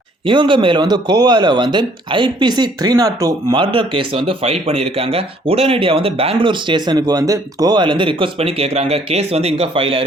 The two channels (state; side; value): normal; both; correlation 0.62